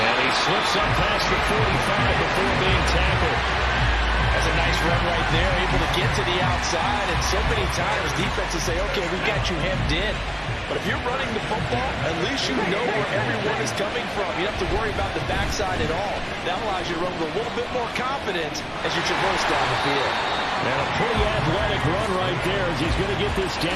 And he slips up past the 45 before being tackled. That's a nice run right there, able to get to the outside. And so many times defenses say, okay, we got you hemmed in. But if you're running the football, at least you know where everyone is coming from. You don't have to worry about the backside at all. That allows you to run with a little bit more confidence as you traverse down the field. And a pretty athletic run right there as he's going to get this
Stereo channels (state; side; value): identical; both; correlation 1.00